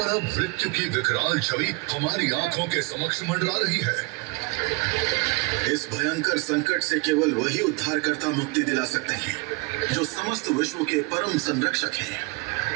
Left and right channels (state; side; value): quieter; left; 27.7 dB